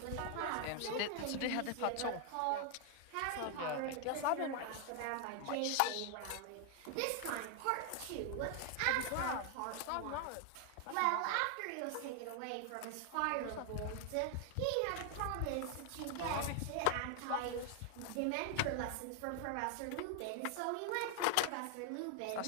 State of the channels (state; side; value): different; both; correlation 0.00